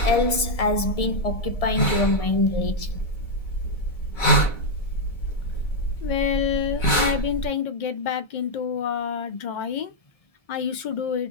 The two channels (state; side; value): late; right; 1.7 ms